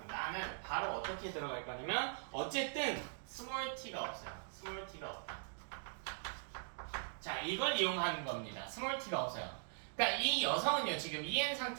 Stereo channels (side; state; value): left; silent; digital silence